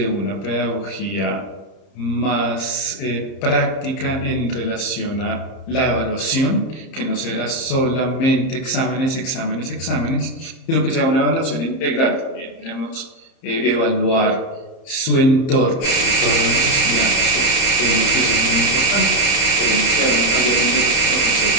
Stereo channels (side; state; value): right; late; 31 ms